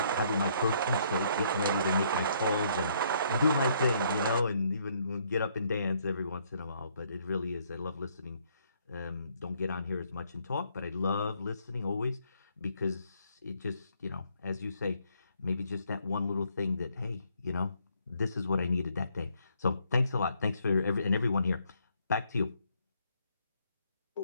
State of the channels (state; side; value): inverted; both; correlation -0.69